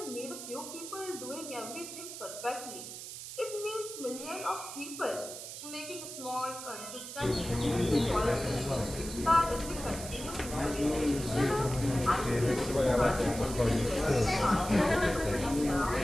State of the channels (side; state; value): right; noise; hiss, 10 dB below the sound